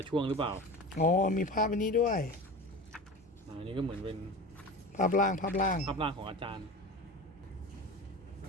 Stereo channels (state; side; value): normal; both; correlation 0.31